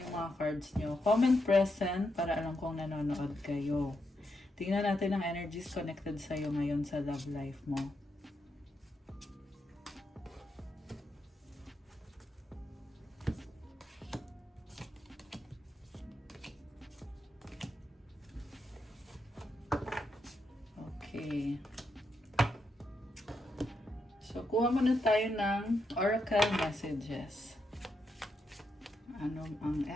mga cards nyo. Comment present para alam kong nanonood kayo. Tingnan natin ang energies connected sa'yo ngayon sa love life mo. Okay. So, kuha muna tayo ng oracle messages. Ano ang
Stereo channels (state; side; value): normal; both; correlation 0.82